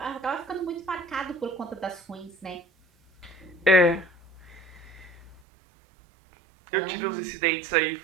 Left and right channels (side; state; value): left; drops out; at 5.4 s